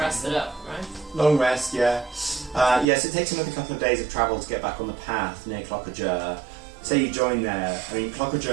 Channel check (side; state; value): left; drops out; at 2.9 s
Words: rested up, right? Long rest, yeah. Yes, it takes another couple of days of travel to get back on the path near Jur. Say you join there. I mean,